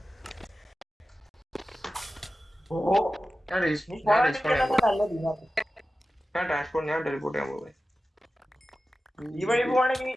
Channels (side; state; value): both; normal; correlation 0.94